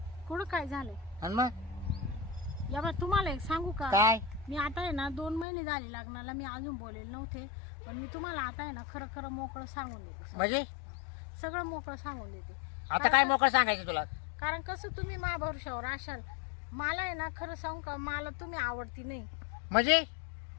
कुठं काय झालंय? आणि मग या बा तुम्हाला एक सांगू का? काय? मी आता आहे ना 2 महिने झाले लग्नाला. मी अजून बोलेल नव्हते पण मी तुम्हाला आता आहे ना खरं खरं मोकळं सांगून देते. म्हणजे सगळं मोकळं सांगून देते. आता काय मोकळं सांगायचं तुला? कारण कसं तुम्ही मा भरोशावर असाल. मला आहे ना खरं सांगू का, मला तुम्ही आवडती नाही. म्हणजे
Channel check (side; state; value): right; drops out; at 5.5 s